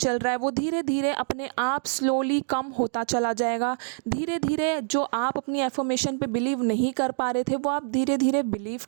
रहा है, वो धीरे धीरे अपने आप स्लोली कम होता चला जाएगा। धीरे धीरे जो आप अपनी एफर्मेशन पे बिलीव नहीं कर पा रहे थे वो आप धीरे धीरे बिलीव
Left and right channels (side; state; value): left; silent; digital silence